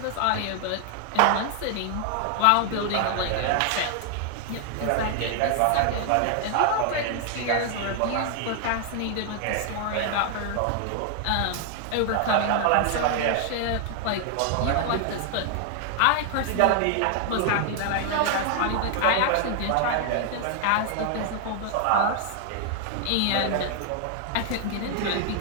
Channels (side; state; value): both; different; correlation 0.00